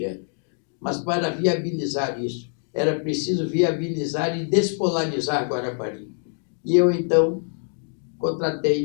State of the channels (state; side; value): silent; right; 56 dB below the other